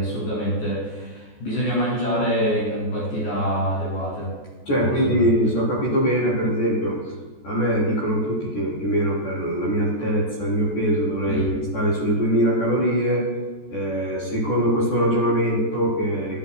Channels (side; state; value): right; late; 14 ms